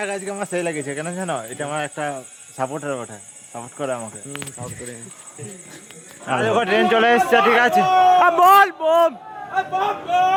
আজকে আমার সেই লাগেছে, কেন জানো? এটা আমার একটা সাপোর্টার ওঠে, সাপোর্ট করে আমাকে, সাপোর্ট করে। আর দেখো ট্রেন চলে এসছে, ঠিক আছে? বল বম,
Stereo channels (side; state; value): both; identical; correlation 1.00